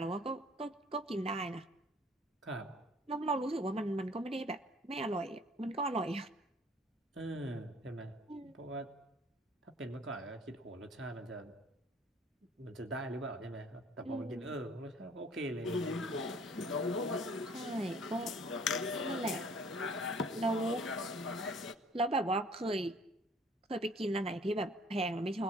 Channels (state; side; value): normal; both; correlation 0.54